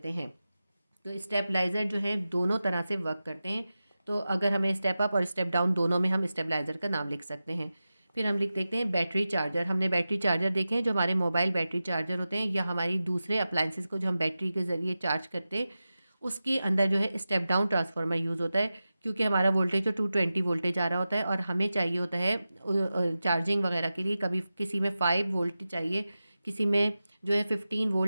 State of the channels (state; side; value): inverted; both; correlation -0.94